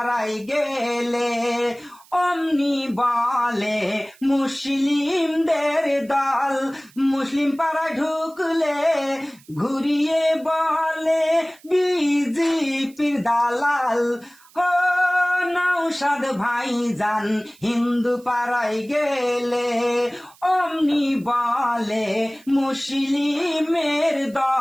গেলে অমনি বলে মুসলিমদের দল, মুসলিম পাড়ায় ঢুকলে ঘুরিয়ে বলে বিজেপির দালাল। ও নৌসাদ ভাই যান হিন্দু পাড়ায় গেলে অমনি বলে মুসলিমের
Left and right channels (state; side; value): noise; right; hiss, 27 dB below the sound